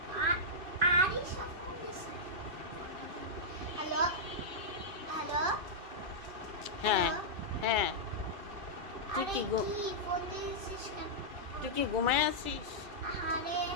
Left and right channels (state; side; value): late; left; 2.3 ms